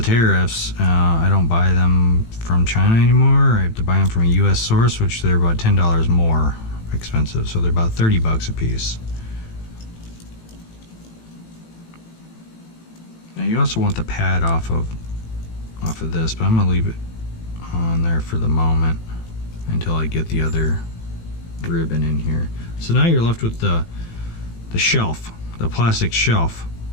tariffs, I don't buy them from China anymore. I have to buy them from a US source, which they're about $10 more expensive, so they're about 30 bucks a piece. Now you also want the pad off of this, but I'm gonna leave it on there for the moment until I get the other ribbon in here. So now you're left with the shelf, the plastic shelf.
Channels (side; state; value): right; late; 18 ms